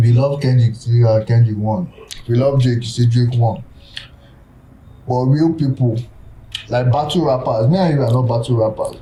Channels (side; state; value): both; identical; correlation 1.00